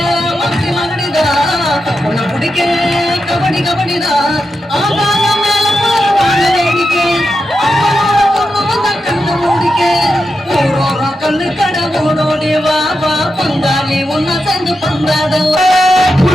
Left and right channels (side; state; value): both; normal; correlation 0.88